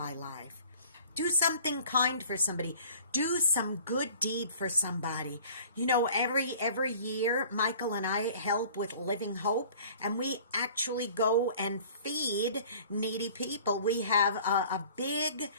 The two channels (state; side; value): inverted; both; correlation -0.49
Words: life. Do something kind for somebody. Do some good deed for somebody. You know, every year, Michael and I help with Living Hope, and we actually go and feed needy people. We have a big